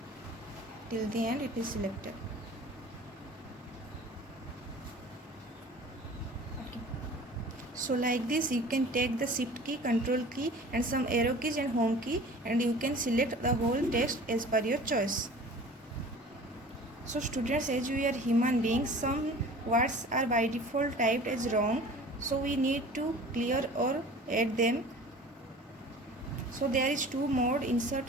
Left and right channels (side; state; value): both; normal; correlation 0.43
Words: Till the end it is selected. Okay. So like this, you can take the Shift key, Control key and some arrow keys and Home key, and you can select the whole text as per your choice. So students, as we are human beings, some words are by default typed as wrong, so we need to clear or add them. So there is two mode,